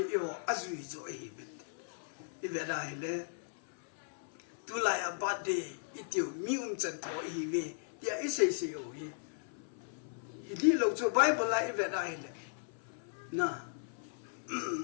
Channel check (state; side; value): silent; right; 53 dB below the other